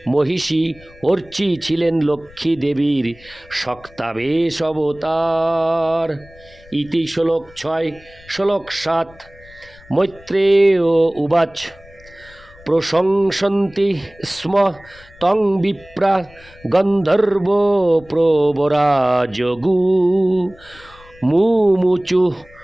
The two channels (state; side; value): noise; left; rumble, 24 dB below the sound